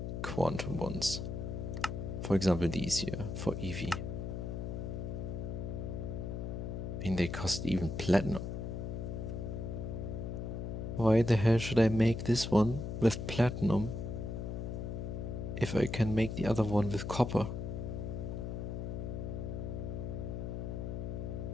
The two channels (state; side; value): noise; left; hum, 4 dB below the sound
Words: quantum ones, for example, these here for EV, I mean they cost even platinum. Why the hell should I make this one with platinum if I can make the other one with copper?